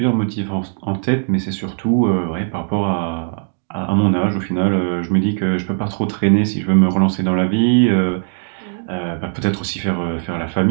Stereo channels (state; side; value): silent; left; 67 dB below the other